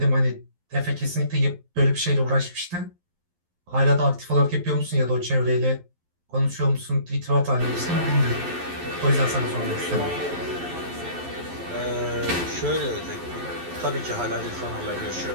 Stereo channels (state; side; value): late; left; 11 ms